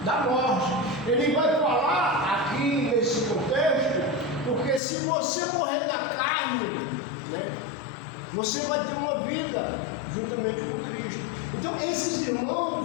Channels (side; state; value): right; drops out; at 4.8 s